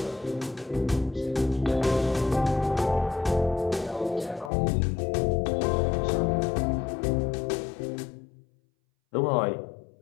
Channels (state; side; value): drops out; right; at 4.5 s